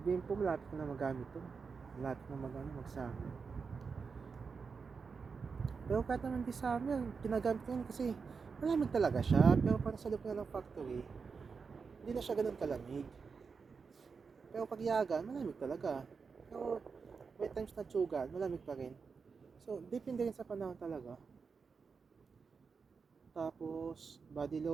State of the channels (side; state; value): left; quieter; 5.3 dB